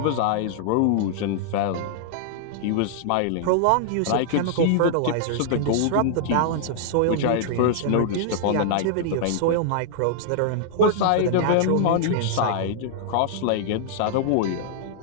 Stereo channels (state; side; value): different; both; correlation -0.01